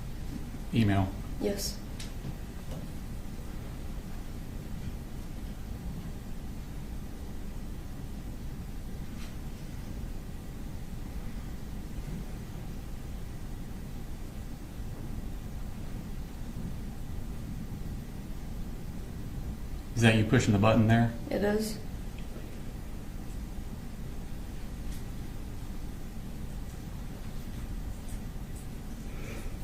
email? Yes. Is that you pushing the button there? It is.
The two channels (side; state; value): both; identical; correlation 1.00